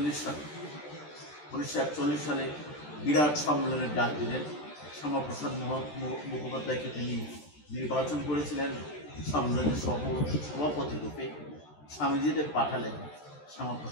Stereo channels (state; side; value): late; right; 13 ms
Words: সালে বিরাট সম্মেলনের ডাক দিলেন। শ্যামাপ্রসাদ মুখোপাধ্যায়কে তিনি নির্বাচন করেছিলেন সম্মেলনের সভাপতি রূপে। স্বামীজিদের পাঠালেন